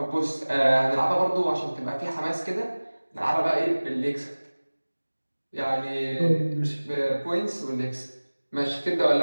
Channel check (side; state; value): both; inverted; correlation -1.00